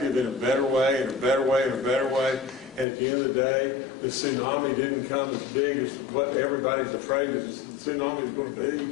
in a better way, in a better way, in a better way, and at the end of the day, the tsunami didn't come as big as what everybody's afraid the tsunami is going to be,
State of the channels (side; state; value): right; drops out; at 2.9 s